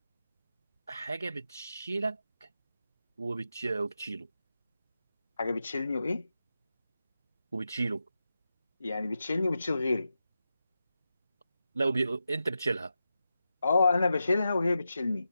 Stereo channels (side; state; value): both; inverted; correlation -0.89